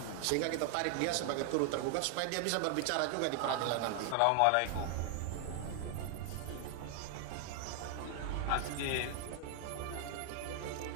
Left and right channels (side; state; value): both; different; correlation 0.00